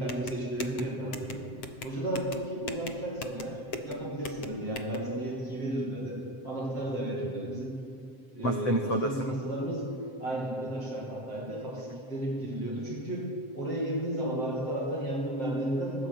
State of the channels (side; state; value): right; late; 7.7 ms